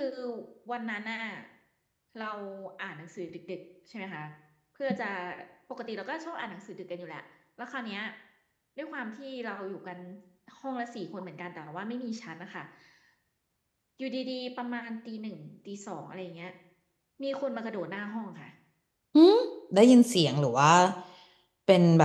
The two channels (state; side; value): identical; both; correlation 1.00